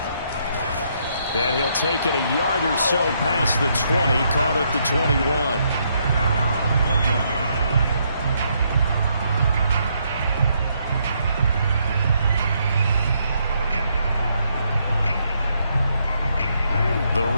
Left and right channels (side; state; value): both; inverted; correlation -0.74